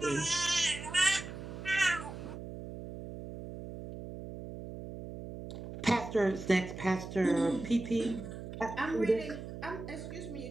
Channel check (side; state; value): right; noise; hum, 10 dB below the sound